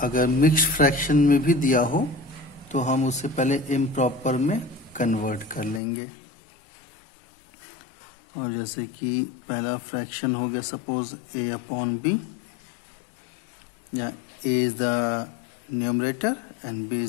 अगर मिक्स्ड फ्रैक्शन में भी दिया हो तो हम उससे पहले इम्प्रॉपर में कन्वर्ट कर लेंगे. और जैसे कि पहला फ्रैक्शन हो गया सपोज a अपॉन b, या a is the numerator and b is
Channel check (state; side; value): drops out; right; at 5.8 s